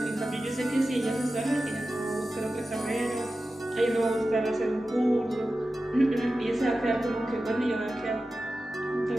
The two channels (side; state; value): both; normal; correlation 0.93